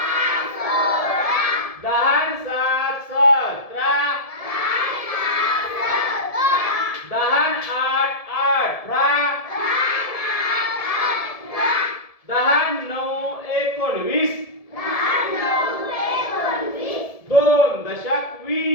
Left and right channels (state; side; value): late; right; 1.7 ms